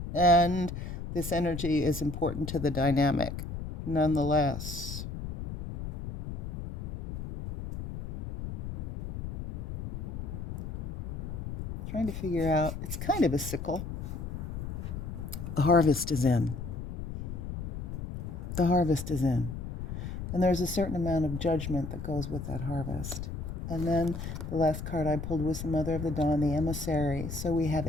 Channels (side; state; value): left; noise; rumble, 6 dB below the sound